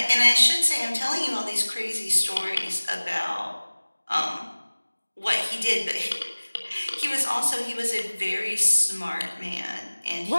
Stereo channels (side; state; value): both; inverted; correlation -1.00